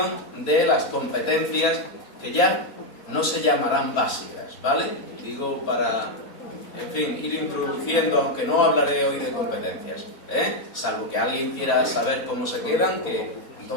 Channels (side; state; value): right; late; 4.2 ms